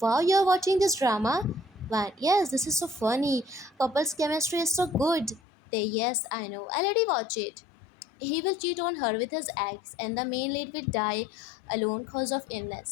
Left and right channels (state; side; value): drops out; right; at 5.4 s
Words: you're watching this drama. One, yes, this is so funny. Couples chemistry is so good. They, yes, I know. I already watch it. He will cheat on her with his ex, and the main lead will die alone cause of